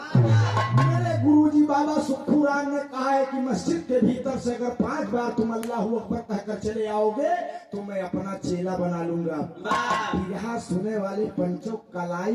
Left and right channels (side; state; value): both; identical; correlation 1.00